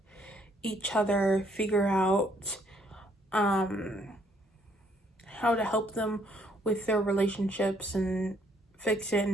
each other figure out um how to help them with their relationships and fix it,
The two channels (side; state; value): both; normal; correlation 0.67